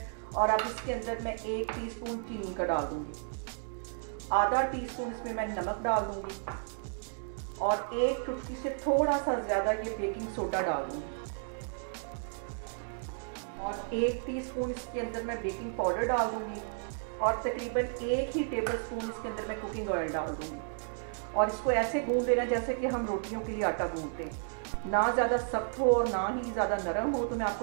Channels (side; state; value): left; silent; digital silence